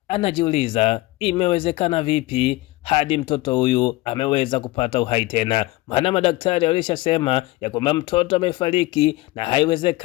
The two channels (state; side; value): quieter; right; 19.8 dB